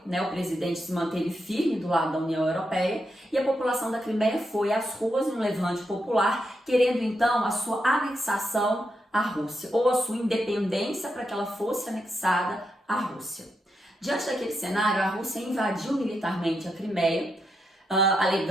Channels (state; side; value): normal; both; correlation 0.83